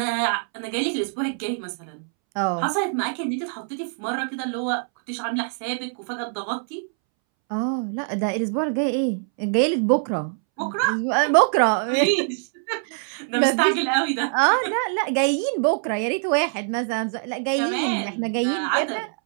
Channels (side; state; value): left; silent; 63 dB below the other